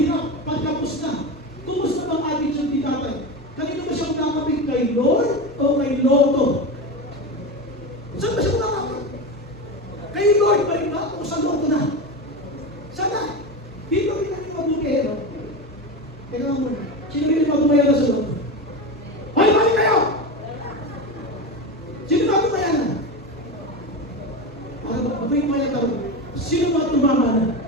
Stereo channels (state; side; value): normal; both; correlation 0.21